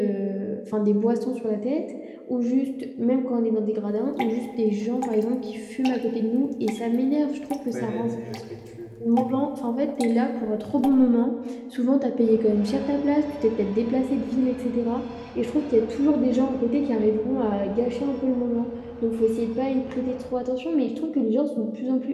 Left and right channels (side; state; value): both; identical; correlation 1.00